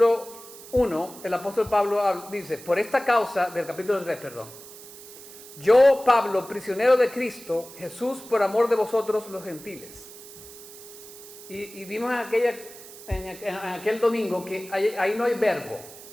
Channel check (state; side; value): noise; right; hiss, 17 dB below the sound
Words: 1, el apóstol Pablo dice, por esta causa, del capítulo 3, perdón. Yo, Pablo, prisionero de Cristo, Jesús, por amor de vosotros los gentiles. Y vimos en aquel domingo que ahí no hay verbo,